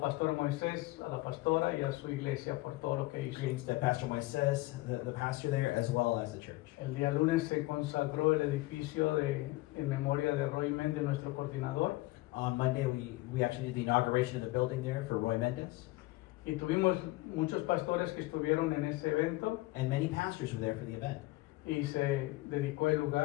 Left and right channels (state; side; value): quieter; right; 20.2 dB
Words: Moisés, a la pastora y a su iglesia por todo lo que hizo. Greetings to Pastor Moises, the pastor there, as well as the church. El día lunes se consagró el edificio en memoria de Roy Méndez, nuestro coordinador, On Monday, we actually did the inauguration of the building there for Roy Mendez, y tuvimos muchos pastores que estuvieron en ese evento and many pastors were there for the event. y se dedicó el